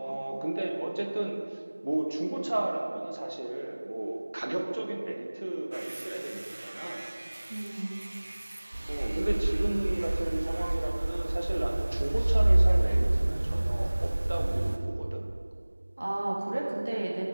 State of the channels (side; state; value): both; inverted; correlation -1.00